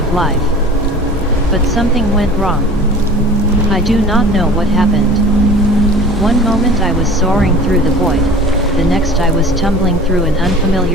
life. But something went wrong. I do not know what happened. One moment I was soaring through the void, the next I was tumbling through an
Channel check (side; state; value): both; normal; correlation 0.42